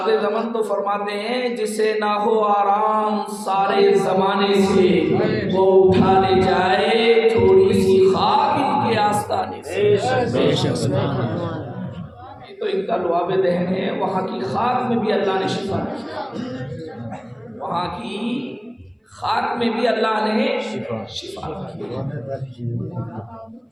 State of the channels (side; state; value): both; identical; correlation 1.00